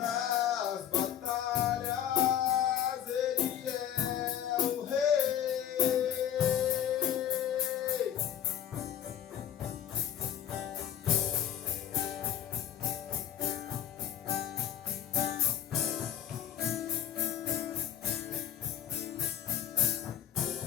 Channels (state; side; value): quieter; right; 10.1 dB